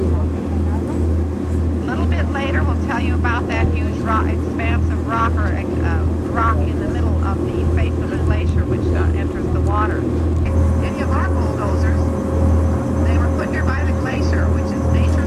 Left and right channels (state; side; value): identical; both; correlation 1.00